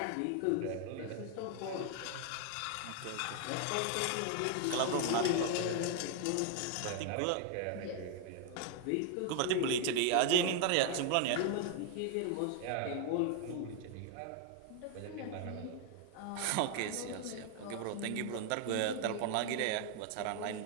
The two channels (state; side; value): different; both; correlation 0.01